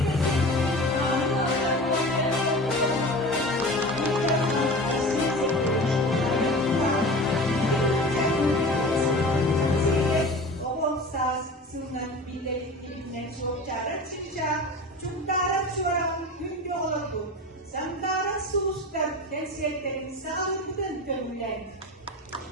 Samtara sustar dan seterin sağlıklıdan görülen.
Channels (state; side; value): normal; both; correlation 0.35